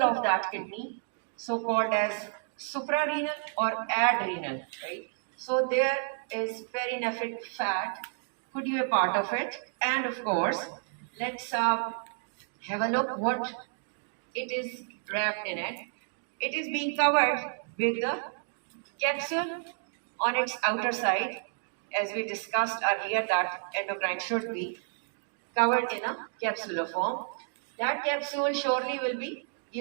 of that kidney, so called as suprarenal or adrenal, right? So there is perinephric fat could be a part of it, and of course, let's have a look what it is wrapped in it. It is being covered with the capsule on its outer side, as we discussed earlier that endocrine should be covered in a capsular form. That capsule surely will be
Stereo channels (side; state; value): left; silent; digital silence